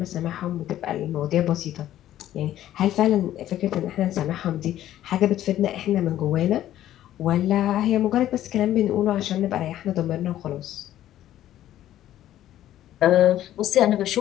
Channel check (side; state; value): right; quieter; 12.7 dB